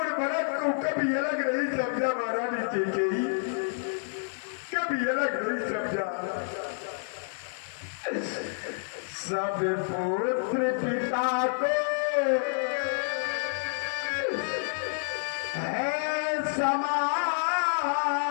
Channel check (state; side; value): silent; right; digital silence